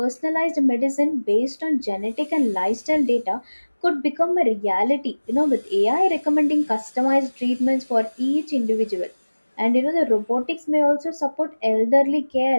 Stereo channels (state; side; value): inverted; both; correlation -1.00